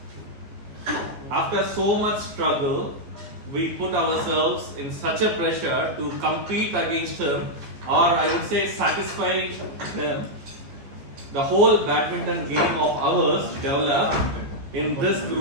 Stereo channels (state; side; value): late; left; 14 ms